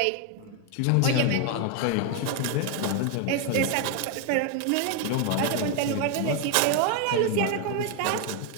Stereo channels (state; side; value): different; both; correlation 0.01